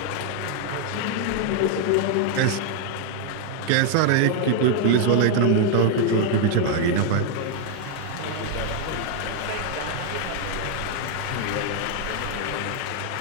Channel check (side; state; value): both; different; correlation 0.00